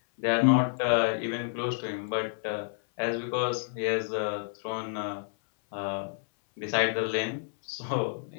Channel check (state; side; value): silent; right; 58 dB below the other